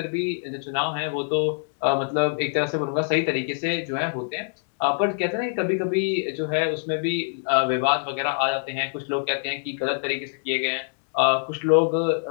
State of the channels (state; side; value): silent; right; digital silence